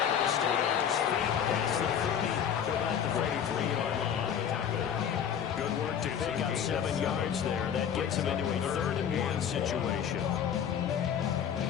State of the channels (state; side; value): quieter; right; 8.5 dB